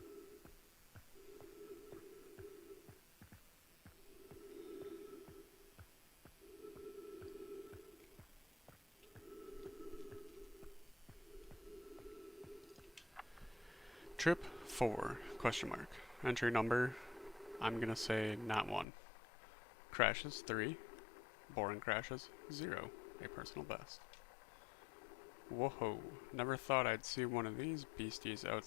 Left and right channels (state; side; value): drops out; right; at 18.9 s